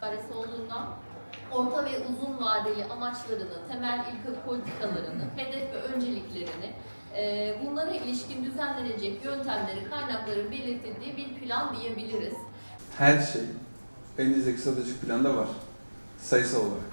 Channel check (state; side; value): inverted; both; correlation -1.00